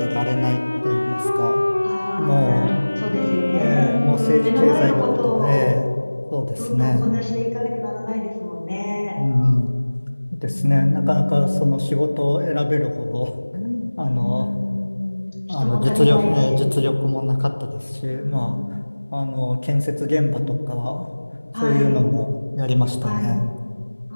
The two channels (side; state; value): both; inverted; correlation -1.00